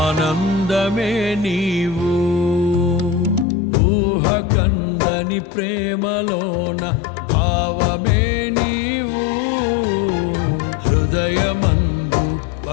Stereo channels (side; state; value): right; drops out; at 3.5 s